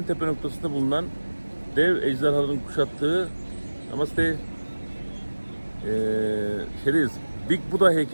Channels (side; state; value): both; inverted; correlation -1.00